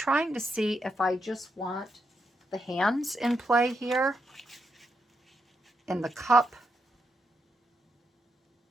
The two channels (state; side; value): normal; both; correlation 0.82